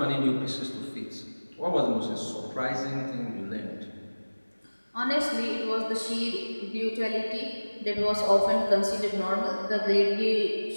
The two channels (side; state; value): both; inverted; correlation -1.00